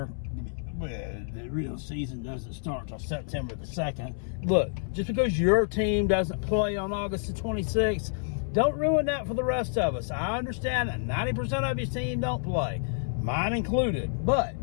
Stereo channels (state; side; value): silent; right; 59 dB below the other